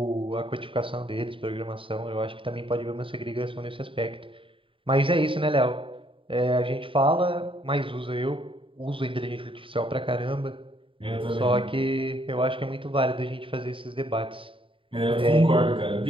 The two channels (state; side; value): late; left; 0.25 ms